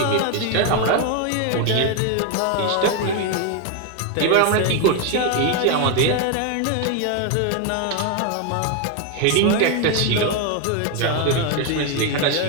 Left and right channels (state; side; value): different; both; correlation 0.01